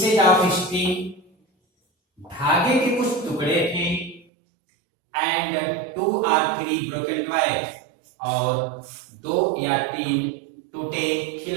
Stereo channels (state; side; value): drops out; left; at 4.2 s